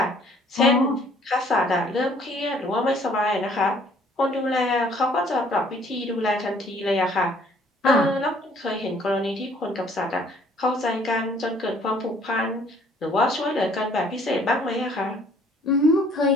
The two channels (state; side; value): normal; both; correlation 0.59